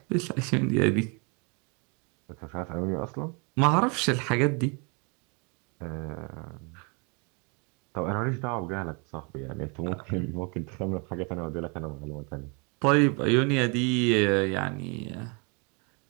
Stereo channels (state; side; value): quieter; left; 33.3 dB